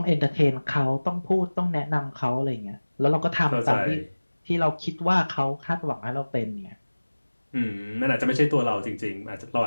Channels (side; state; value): both; inverted; correlation -1.00